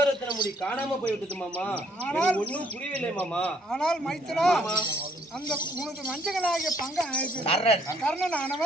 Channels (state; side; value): normal; both; correlation 0.67